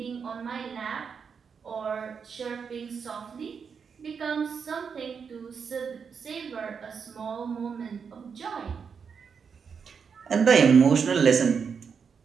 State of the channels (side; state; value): left; quieter; 6.3 dB